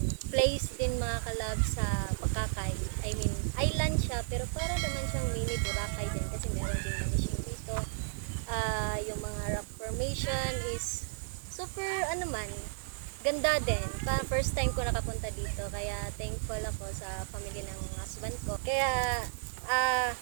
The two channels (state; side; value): silent; left; digital silence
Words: place din mga kalabs sa Bakakay. I mean, island siya pero para naman siyang mini Boracay din kasi meron din manishing dito. Yung mga rock formation is super ganda din. First time ko nakapunta dito kaya thankful ako sa family ng husband ko. Kaya